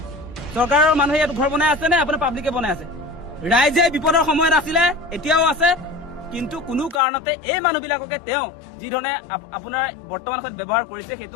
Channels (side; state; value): right; drops out; at 7.0 s